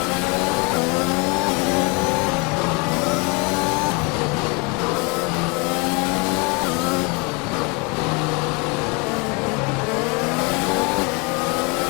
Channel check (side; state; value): right; quieter; 30.4 dB